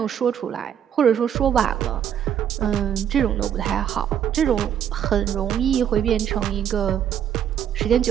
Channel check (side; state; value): left; quieter; 9.3 dB